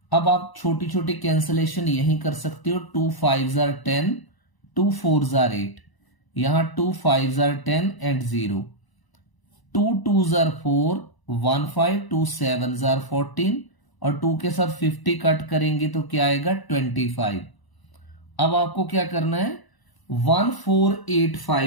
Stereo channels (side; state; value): right; late; 1.0 ms